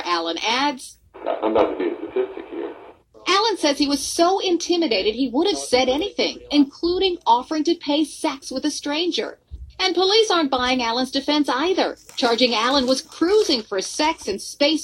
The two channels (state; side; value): identical; both; correlation 1.00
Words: Allen adds, I'm about to be a statistic here. Allen says he was so intimidated he would have said anything, including offering to pay sex with a stranger. And police aren't buying Allen's defense either, charging Allen was cruising for sex in